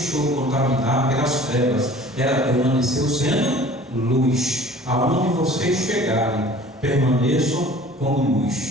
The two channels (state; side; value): normal; both; correlation 0.47